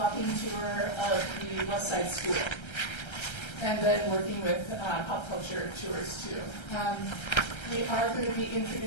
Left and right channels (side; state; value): right; late; 1.3 ms